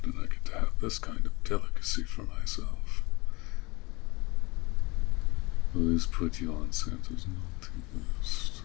I get to have this kind of delicacy for myself. Will this put you on Santa's naughty list?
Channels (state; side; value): quieter; right; 24.7 dB